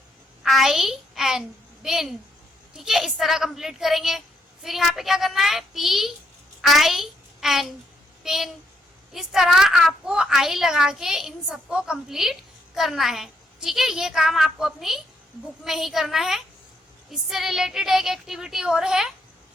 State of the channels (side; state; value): both; normal; correlation 0.75